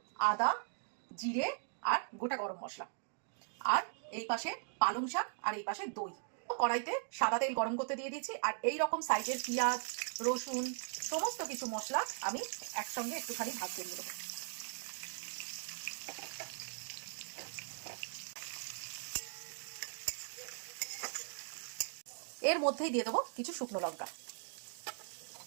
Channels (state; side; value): silent; left; digital silence